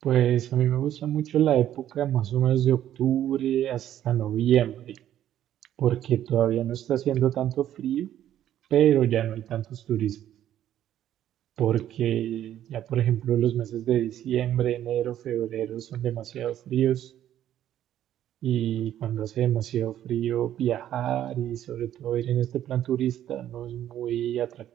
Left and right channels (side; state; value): left; quieter; 11.5 dB